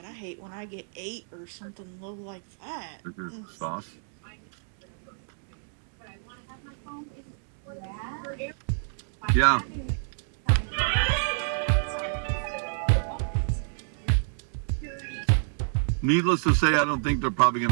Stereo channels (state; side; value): silent; left; digital silence